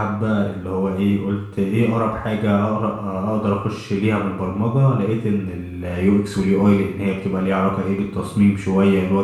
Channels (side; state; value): both; identical; correlation 1.00